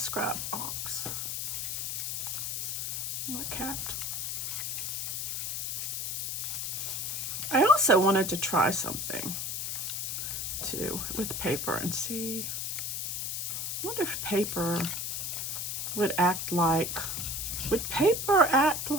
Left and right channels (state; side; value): noise; left; hiss, 2 dB below the sound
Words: box. My cat. I also wanted to try something too with paper and see. I wonder if paper would act like, would paper act